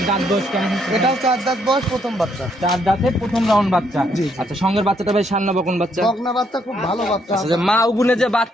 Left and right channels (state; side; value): normal; both; correlation 0.72